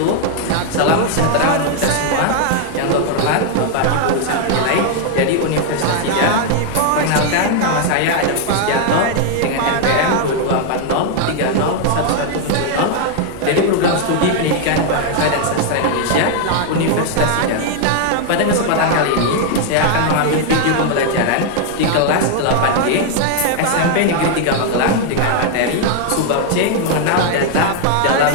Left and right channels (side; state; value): both; different; correlation 0.00